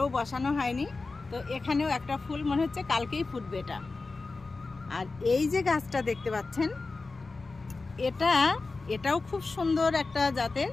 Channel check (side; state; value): right; quieter; 3.8 dB